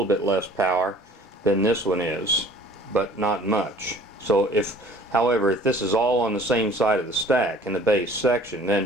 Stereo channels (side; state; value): both; normal; correlation 0.51